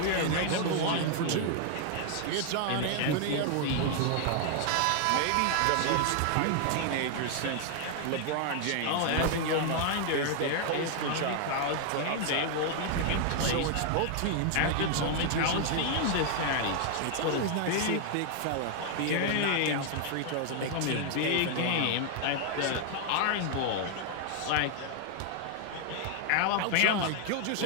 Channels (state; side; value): different; both; correlation 0.00